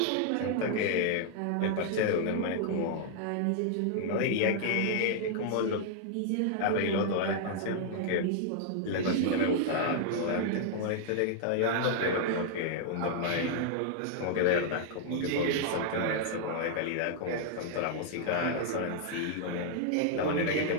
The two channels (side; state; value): both; different; correlation -0.01